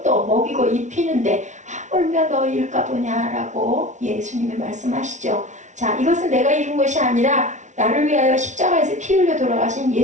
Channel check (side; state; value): left; late; 0.35 ms